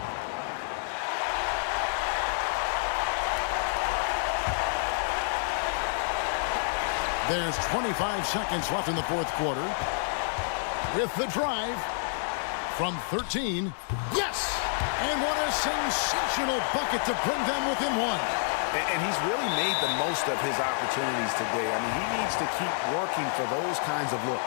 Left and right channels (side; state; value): right; silent; digital silence